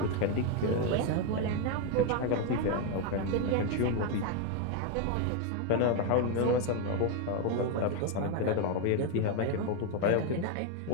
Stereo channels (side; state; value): both; different; correlation 0.01